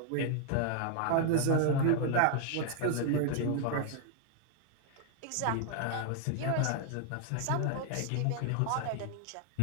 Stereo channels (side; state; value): both; different; correlation 0.00